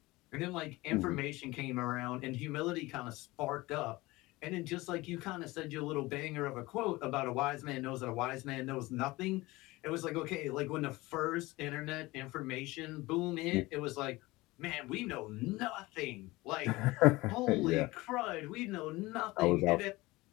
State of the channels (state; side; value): quieter; right; 20.7 dB